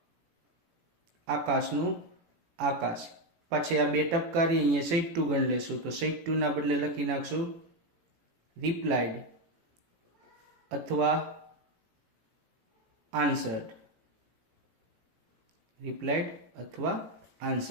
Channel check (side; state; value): left; late; 18 ms